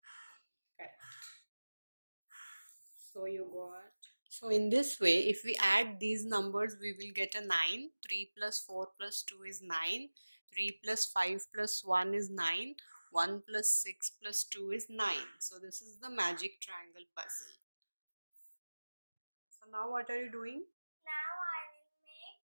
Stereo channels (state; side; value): inverted; both; correlation -1.00